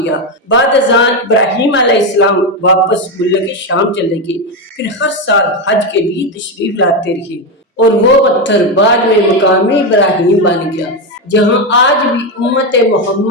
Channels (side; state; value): both; normal; correlation 0.10